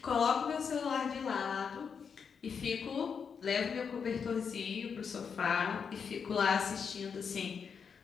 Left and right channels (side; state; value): right; quieter; 6.4 dB